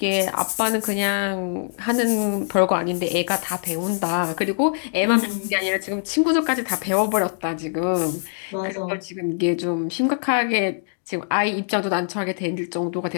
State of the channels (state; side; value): silent; right; digital silence